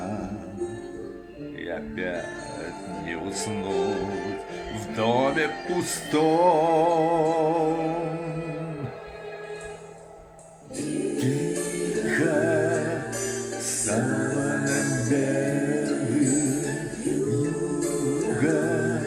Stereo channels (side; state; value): both; identical; correlation 1.00